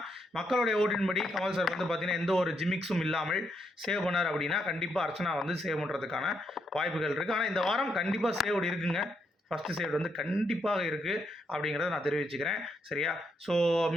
மக்களுடைய ஓட்டின்படி கமல் சார் வந்து பார்த்தீங்கன்னா எந்த ஒரு ஜிமிக்ஸும் இல்லாமல் சேவ் பண்ணார் அப்படின்னா கண்டிப்பாக அர்ச்சனா வந்து சேவ் பண்ணுறதுக்கான வாய்ப்புகள் இருக்குது. ஆனால் இந்த வாரம் கண்டிப்பாக சேவ்டு இருக்குங்க. ஃபஸ்ட்டு சேவ்டு வந்து கண்டிப்பாக இருக்குது அப்படிங்கிறத நான் தெரிவிச்சுக்கிறேன். சரியா, ஸோ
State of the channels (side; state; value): both; normal; correlation 0.78